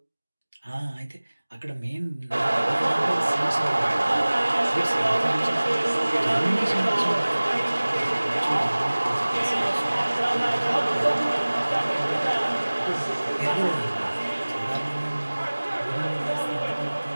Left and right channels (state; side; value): inverted; both; correlation -1.00